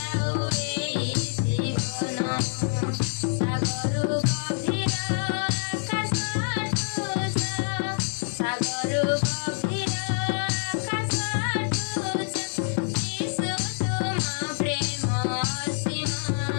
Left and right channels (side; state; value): right; silent; 61 dB below the other